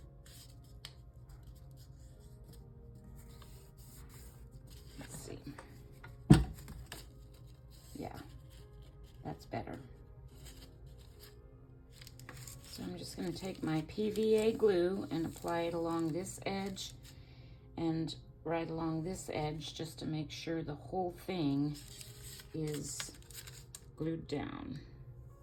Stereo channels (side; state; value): both; identical; correlation 1.00